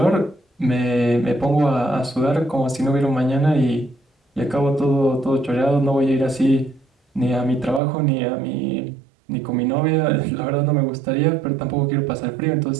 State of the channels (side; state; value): left; drops out; at 7.8 s